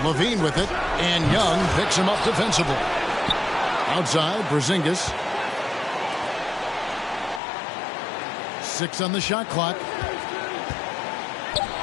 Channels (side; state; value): right; drops out; at 7.4 s